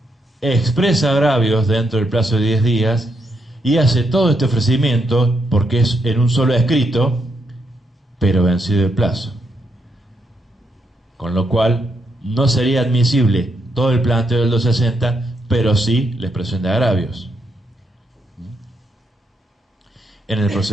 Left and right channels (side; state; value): both; normal; correlation 0.79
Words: expresa agravios dentro del plazo de 10 días y hace todo este ofrecimiento porque es en un solo escrito, pero vencido el plazo. Con lo cual, no sería admisible todo el planteo del 260, pero sí la expresión de agravios. En el